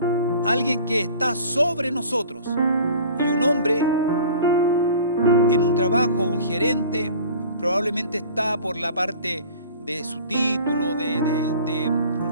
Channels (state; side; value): inverted; both; correlation -0.44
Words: Alguien que está sobre nosotros. Y un hombre en un trabajo, un gerente, probablemente está por la parte de su título,